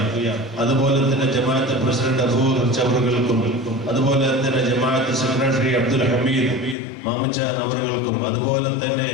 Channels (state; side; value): drops out; right; at 6.8 s